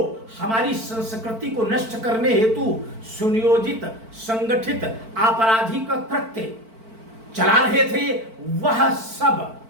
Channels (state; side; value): late; left; 4.5 ms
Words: हमारी संस्कृति को नष्ट करने हेतु सुनियोजित संगठित आपराधिक कृत्य चला रहे थे, वह सब